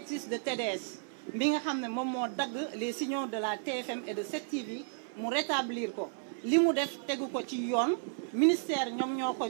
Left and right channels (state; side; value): silent; left; 56 dB below the other